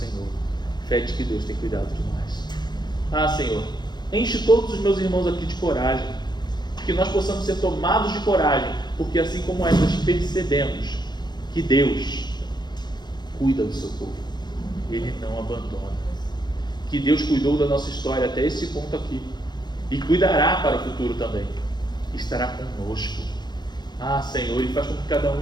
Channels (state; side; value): late; right; 0.21 ms